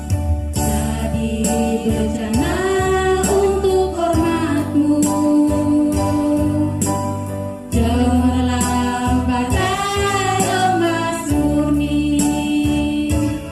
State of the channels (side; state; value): both; identical; correlation 1.00